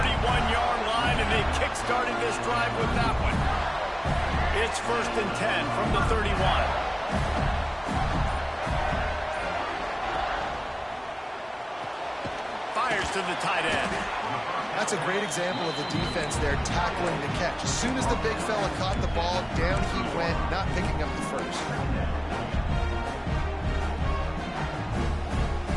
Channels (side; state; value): both; identical; correlation 1.00